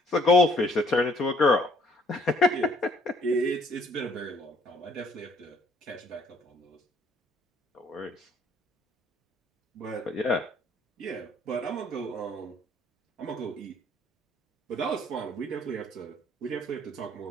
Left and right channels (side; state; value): both; normal; correlation 0.62